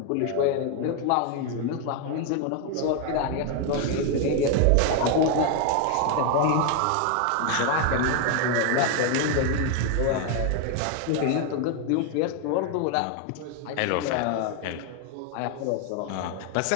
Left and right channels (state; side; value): different; both; correlation 0.01